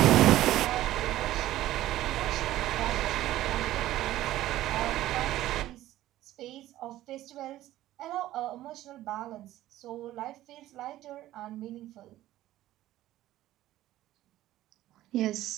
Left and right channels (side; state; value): left; quieter; 14.7 dB